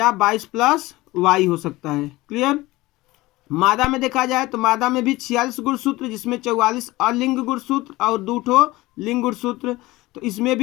22 प्लस वाई हो सकता है। क्लियर? मादा में देखा जाए तो मादा में भी 46 गुणसूत्र, जिसमें 44 अलिंग गुणसूत्र और 2 ठो लिंग गुणसूत्र। तो इसमें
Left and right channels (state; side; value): quieter; right; 19.5 dB